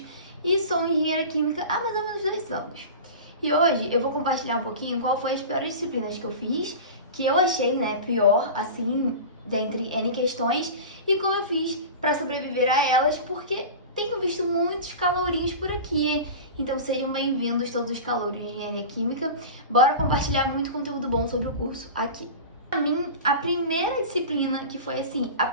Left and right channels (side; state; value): both; inverted; correlation -0.32